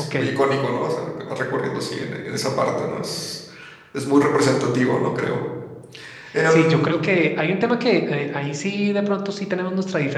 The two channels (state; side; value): identical; both; correlation 1.00